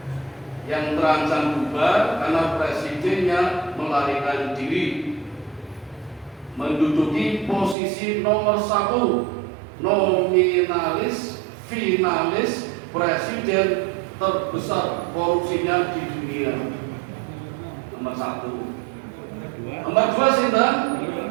yang terancam bubar karena presidennya melarikan diri, menduduki posisi nomor 1 nominalis finalis presiden terbesar korupsinya di dunia. Nomor 1. Nomor 2 sinten?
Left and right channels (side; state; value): left; drops out; at 7.8 s